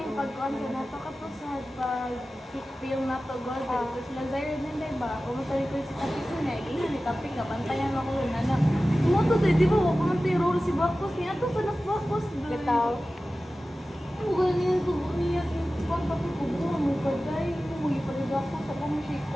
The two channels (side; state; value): both; normal; correlation 0.95